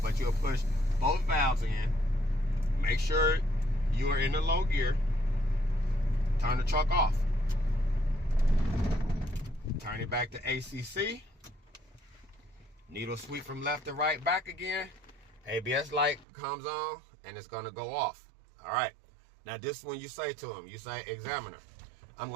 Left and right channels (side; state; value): left; drops out; at 16.2 s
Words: but you'll push both valves in. Make sure you are in the low gear. Turn the truck off. Turn it back to ACC. Needle sweep from left to right back again. ABS light comes on and it's gonna go off. All right. Now this is when you say to him, you say, examiner, I'm